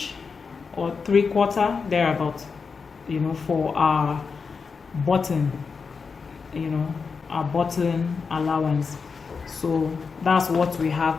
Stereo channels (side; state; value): right; quieter; 5.2 dB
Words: or 3/4 thereabout, you know, for our button, you know, our button allowance. So that's what we have